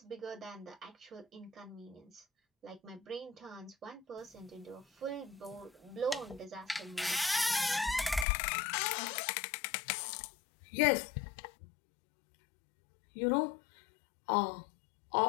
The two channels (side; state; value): right; drops out; at 8.2 s